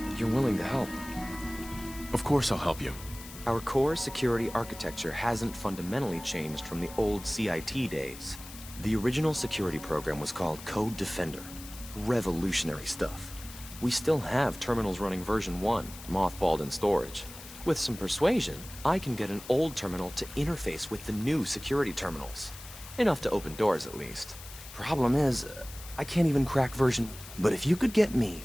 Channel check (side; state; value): left; noise; hiss, 15 dB below the sound